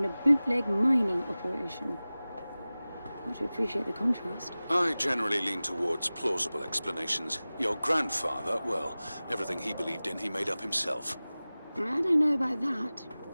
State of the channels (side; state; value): both; inverted; correlation -0.98